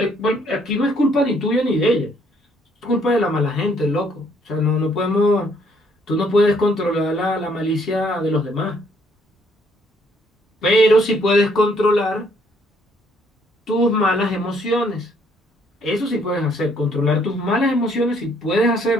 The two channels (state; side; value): normal; both; correlation 0.66